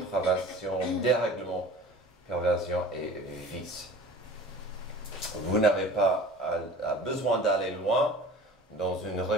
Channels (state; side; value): normal; both; correlation 0.41